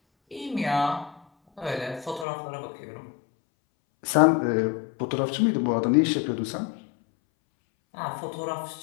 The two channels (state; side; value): drops out; right; at 2.2 s